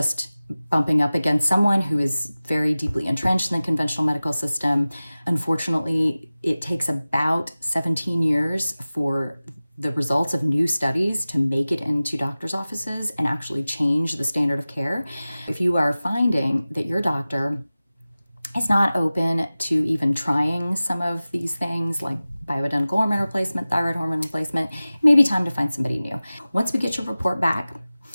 bumping up against someone who is very deeply entrenched in the conventional medical system. Unfortunately, it takes about 17 years for the results of new studies to make it into doctors' offices and actually change the standard of care. If you are finding that your doctor is not open to even trying some of these things like bioidentical hormone replacement, thyroid hormone replacement, it may be time to find somebody new. Once we get your report back,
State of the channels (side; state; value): both; inverted; correlation -0.97